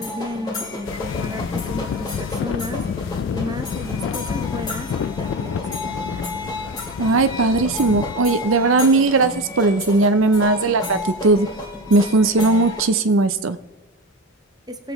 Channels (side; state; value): both; normal; correlation 0.24